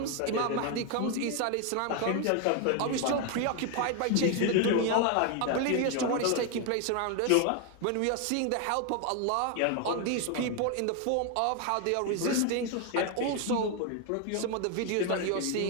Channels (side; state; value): both; different; correlation 0.01